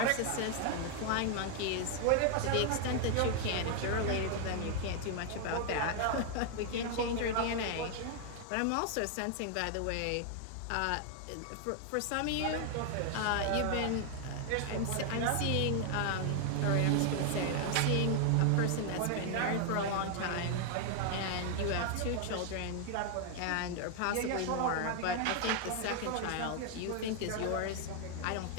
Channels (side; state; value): both; different; correlation 0.00